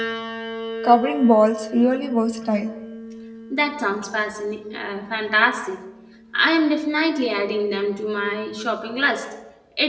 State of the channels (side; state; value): both; identical; correlation 1.00